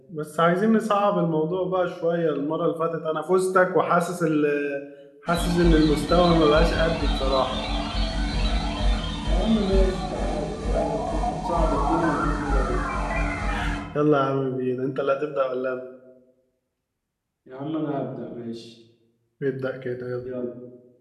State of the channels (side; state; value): both; identical; correlation 1.00